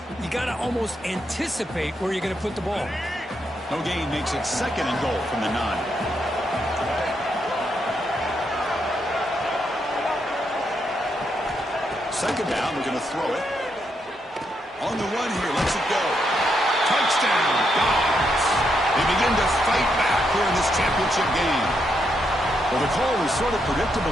You got to almost anticipate where you're going to put the ball. No gain makes it 2nd and goal from the 9. Second down. We're going to throw it. On the run here, lets it go. Touchdown, Dogs. They begin to fight back here in this championship game. Well, the call was sort of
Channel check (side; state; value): both; normal; correlation 0.79